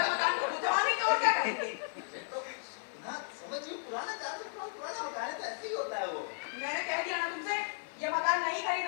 मकान को बुढ़वा नहीं तो और क्या करेंगे? ना समझ गई, पुराना 400 साल पुराना मकान है तो ऐसे ही होता है वो। मैंने कह दिया ना तुमसे ये मकान नहीं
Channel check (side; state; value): right; silent; digital silence